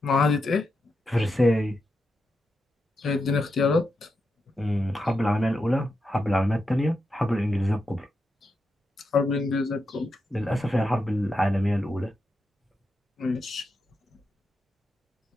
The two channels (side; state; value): both; normal; correlation 0.86